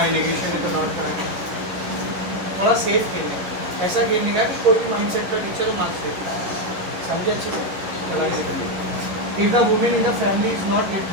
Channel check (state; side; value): late; left; 11 ms